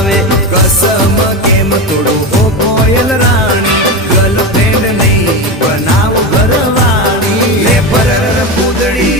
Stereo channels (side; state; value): both; normal; correlation 0.19